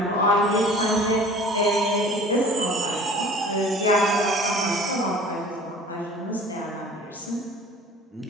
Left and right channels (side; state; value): both; normal; correlation 0.46